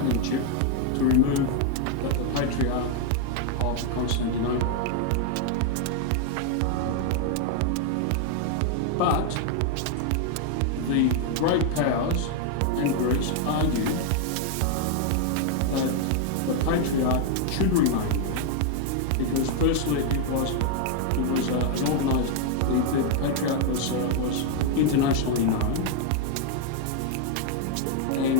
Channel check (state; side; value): different; both; correlation 0.00